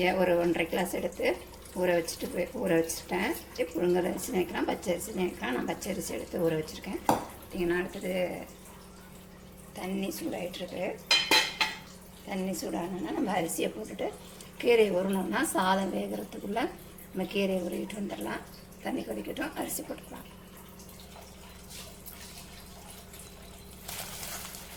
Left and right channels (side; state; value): both; identical; correlation 1.00